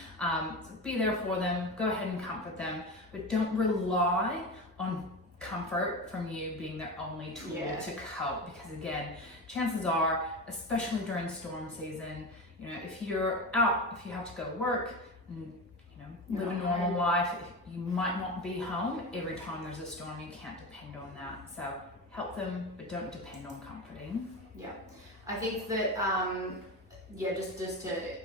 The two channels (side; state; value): both; normal; correlation 0.24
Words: So be there for them, go ahead and comfort them, but don't rely on comfort from you being their only tool to cope, because again, chances are, especially during storm season, if you're out, if you have to go work and live a normal life, you might not be home every time there's a storm. You can't depend on that. So help them, but don't depend on comforting. Yeah, I think that just to